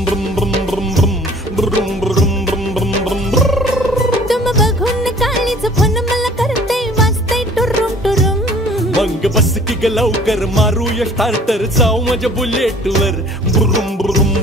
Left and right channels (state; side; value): normal; both; correlation 0.51